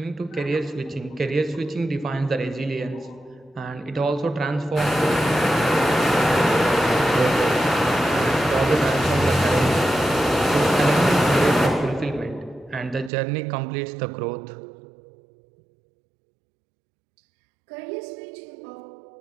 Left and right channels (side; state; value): left; drops out; at 13.1 s